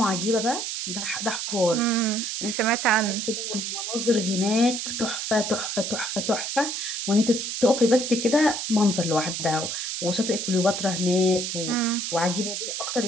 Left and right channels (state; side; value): noise; right; hiss, 3 dB below the sound